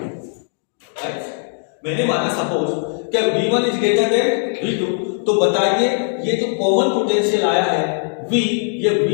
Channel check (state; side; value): silent; right; digital silence